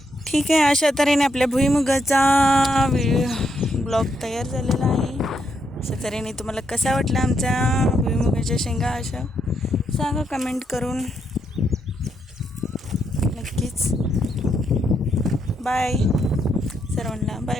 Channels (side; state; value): both; normal; correlation 0.78